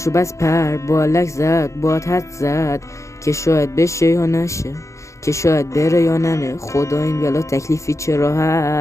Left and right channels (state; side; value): late; right; 0.15 ms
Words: بس پر بالک زد، باد حد زد که شاید بشه یا نشه، که شاید بره یا نره. خدا این بلا تکلیفی چرا